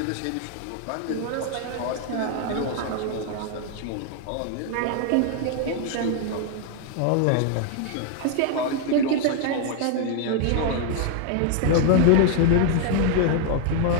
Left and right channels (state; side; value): different; both; correlation 0.00